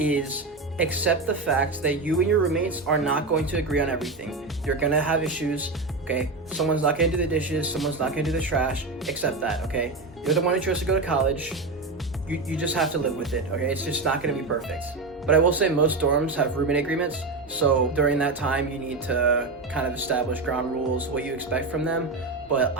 accept the fact that you and your roommates are not going to agree on everything. You're gonna have issues, okay? Someone's not gonna do the dishes, someone's not gonna do the trash. Accept that, okay? You're the one who chose to go to college. You just have to live with it, okay? It's just not gonna be perfect. But I will say most dorms have roommate agreements, so during that time you need to kind of establish ground rules, what you expect from them, but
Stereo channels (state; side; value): quieter; left; 3.6 dB